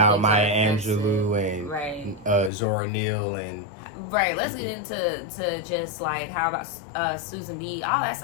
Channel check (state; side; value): drops out; right; at 2.5 s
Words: Maya Angelou and Zora Neale and. Right, let's get into just like how about Susan B. All that